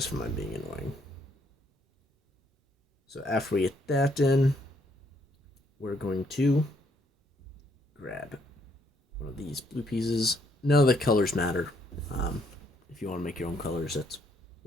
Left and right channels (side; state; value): both; normal; correlation 0.70